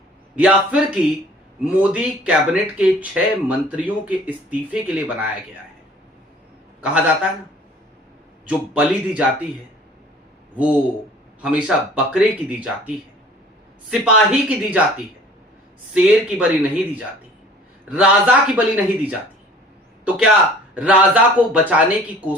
या फिर कि मोदी कैबिनेट के 6 मंत्रियों के इस्तीफे के लिए बनाया गया है? कहा जाता है ना, जो बलि दी जाती है वो हमेशा बकरे की दी जाती है, सिपाही की दी जाती है, शेर की बलि नहीं दी जाती, राजा की बलि नहीं दी जाती। तो क्या राजा को बचाने की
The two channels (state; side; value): normal; both; correlation 0.50